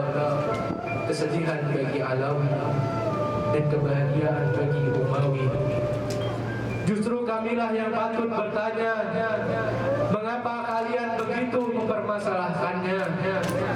kesedihan bagi Alawi dan kebahagiaan bagi Umawi. Justru kamilah yang patut bertanya, mengapa kalian begitu mempermasalahkannya?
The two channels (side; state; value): both; identical; correlation 1.00